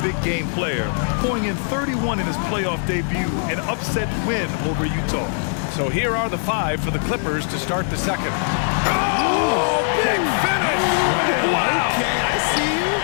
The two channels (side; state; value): right; silent; 64 dB below the other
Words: big game player, going in 31 in his playoff debut, an upset win over Utah. So here are the 5 for the Clippers to start the second. Oh, big finish! Wow! Okay, I see you.